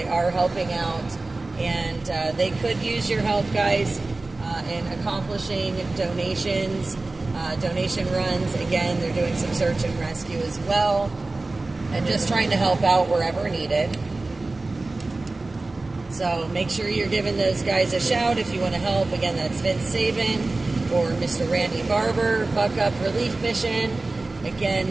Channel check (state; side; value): quieter; left; 3.2 dB